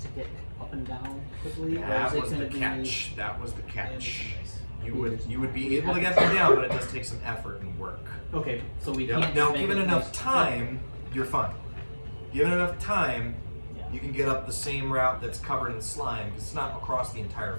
to get up and down quickly? Or That is it was the gonna be- catch. That was the catch. You would be able to get them down, but it does take some effort and work. Okay, so we Yep. can't. Now, just make given it enough nice- time, you're fine. Given enough time, Yeah. you can get up the same route that's covered in slime because it's not across the entire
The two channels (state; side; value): inverted; both; correlation -1.00